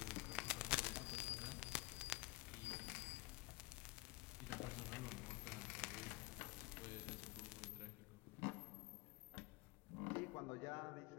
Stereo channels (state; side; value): quieter; right; 22.8 dB